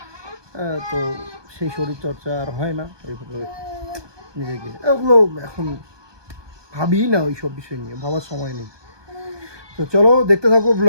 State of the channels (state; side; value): late; left; 1.2 ms